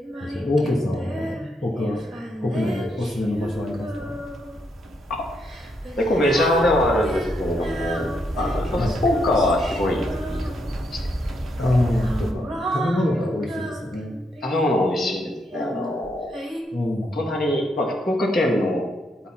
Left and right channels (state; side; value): normal; both; correlation 0.78